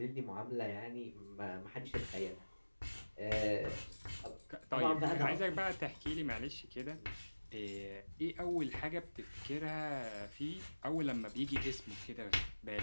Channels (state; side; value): inverted; both; correlation -1.00